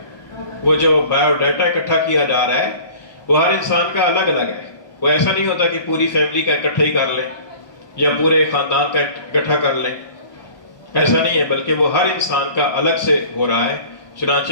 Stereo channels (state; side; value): late; right; 1.2 ms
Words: وہ جو بایو ڈیٹا اکٹھا کیا جا رہا ہے وہ ہر انسان کا الگ الگ ہے. وہ ایسا نہیں ہوتا کہ پوری فیملی کا اکٹھا ہی کر لیں یا پورے خاندان کا اکٹھا کر لیں، ایسا نہیں ہے، بلکہ وہ ہر انسان کا الگ سے ہو رہا ہے.